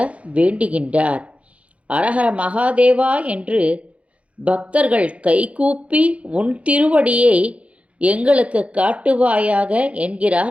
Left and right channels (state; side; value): late; left; 0.064 ms